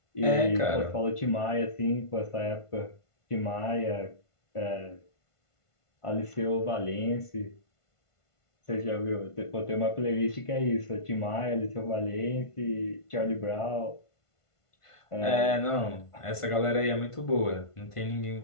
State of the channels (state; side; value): late; right; 1.5 ms